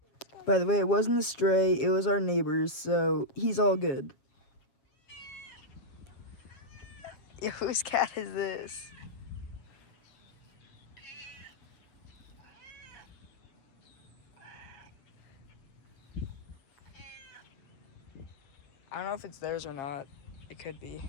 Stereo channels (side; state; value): right; late; 7.3 ms